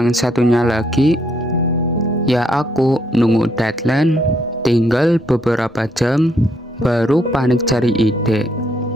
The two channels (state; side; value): normal; both; correlation 0.72